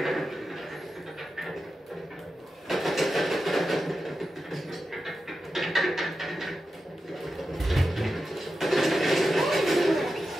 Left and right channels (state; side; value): normal; both; correlation 0.91